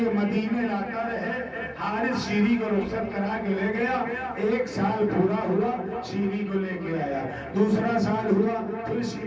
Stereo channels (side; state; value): both; identical; correlation 1.00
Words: مدینے لاتا رہے۔ حارث شیری کو رخصت کرا کے لے گیا، ایک سال پورا ہوا شیری کو لے کے آیا، دوسرا سال ہوا پھر